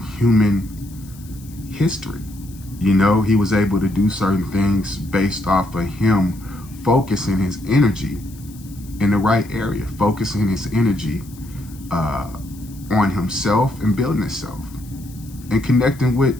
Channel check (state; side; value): noise; left; hiss, 22 dB below the sound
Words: human history. You know, he was able to do certain things based off of him focusing his energy in the right area, focusing his energy on himself and building himself and connecting with